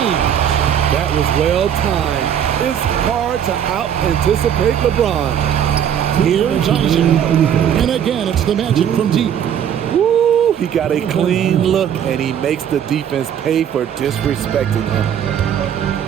That was well timed. It's hard to out-anticipate LeBron. Here's Isaac, and again, it's the Magic from deep. Woo! He got a clean look, and he makes the defense pay for disrespecting him.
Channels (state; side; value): quieter; left; 9.2 dB